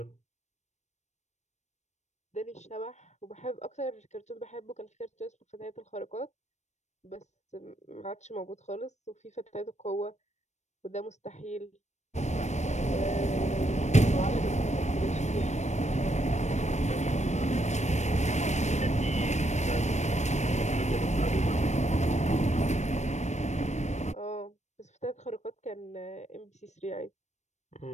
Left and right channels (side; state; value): right; late; 0.34 ms